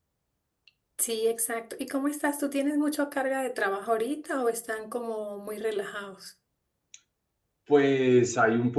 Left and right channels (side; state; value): both; identical; correlation 1.00